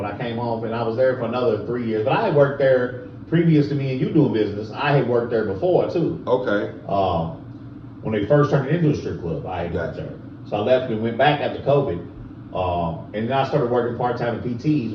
I came home, and I was there for another 3 years. But I had worked there previous to me and you doing business. I had worked there before too. Okay. When they first turned it into a strip club, I had worked there. So I left and went back after COVID. And then I started working part-time at PTs.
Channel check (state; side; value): identical; both; correlation 1.00